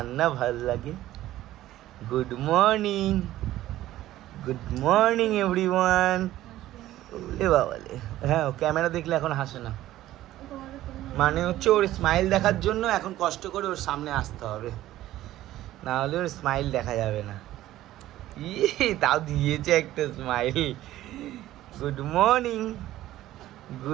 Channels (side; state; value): left; quieter; 14.5 dB